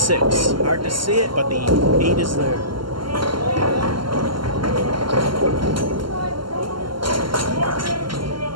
Hard to see it, but the 8 is there.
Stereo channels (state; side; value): late; left; 0.72 ms